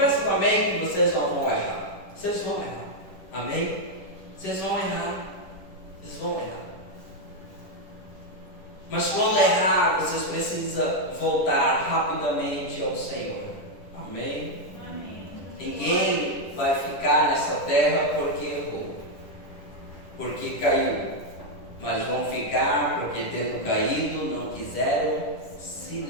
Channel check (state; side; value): late; right; 10 ms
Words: também que vocês não vão errar. Vocês vão errar. Amém? Vocês vão errar. Mas quando errar, vocês precisam voltar rapidamente ao Senhor. Amém? Ninguém vai ficar nessa terra porque errou, porque caiu. Mas vão ficar porque, tendo caído, não quiseram se